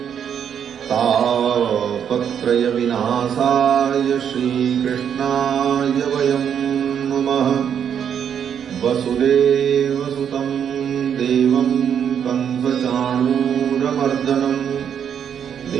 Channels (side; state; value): left; quieter; 8.3 dB